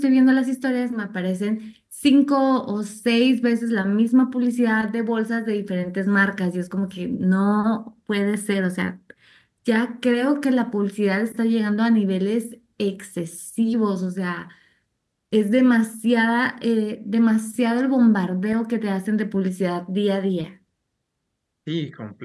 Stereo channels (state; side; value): identical; both; correlation 1.00